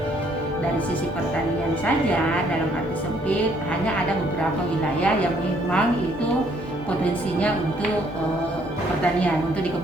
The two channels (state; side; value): normal; both; correlation 0.66